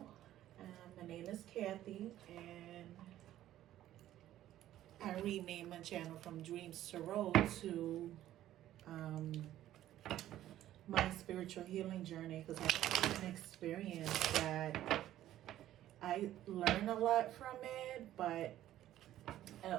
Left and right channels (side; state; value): left; quieter; 13.1 dB